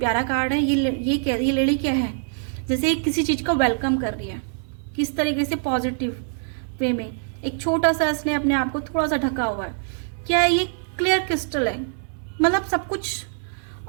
कार्ड है। ये लेडी क्या है, जैसे किसी चीज़ का वेलकम कर रही है, किस तरीके से पॉजिटिव वे में, एक छोटा सा इसने अपने आप को थोड़ा सा ढका हुआ है। क्या है ये, क्लियर क्रिस्टल है, मतलब सब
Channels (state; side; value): silent; left; 63 dB below the other